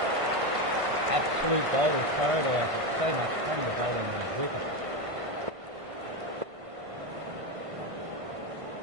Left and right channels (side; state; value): left; late; 1.5 ms